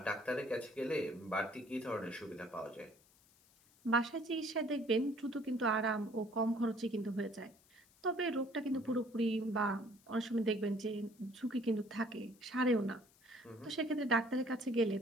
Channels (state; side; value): noise; left; hiss, 29 dB below the sound